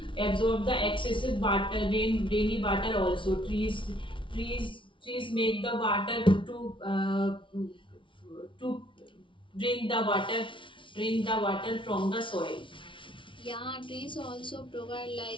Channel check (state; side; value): late; right; 0.25 ms